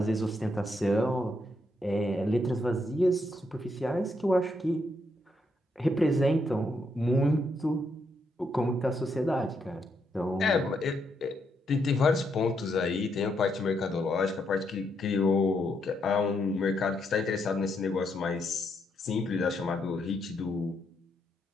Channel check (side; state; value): both; normal; correlation 0.78